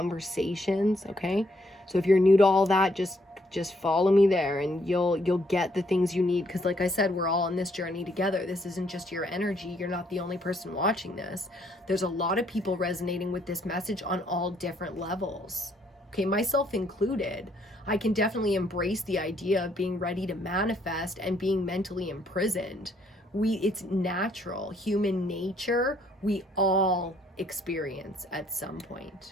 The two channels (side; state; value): both; normal; correlation 0.69